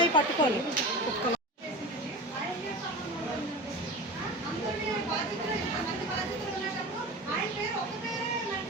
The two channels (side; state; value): both; normal; correlation 0.30